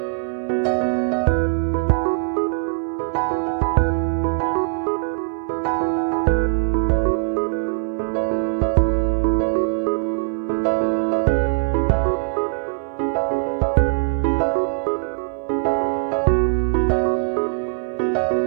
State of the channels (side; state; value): left; silent; 60 dB below the other